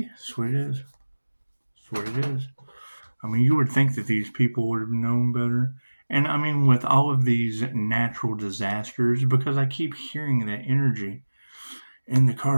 That's what it is. That's what it is. I mean, you would think that these people would have known better. And I mean, with all of these natural disasters, because I keep hearing that energy in the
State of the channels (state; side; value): inverted; both; correlation -1.00